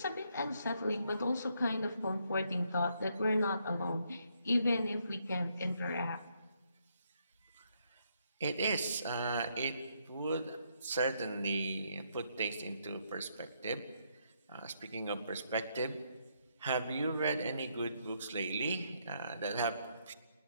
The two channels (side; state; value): both; inverted; correlation -0.74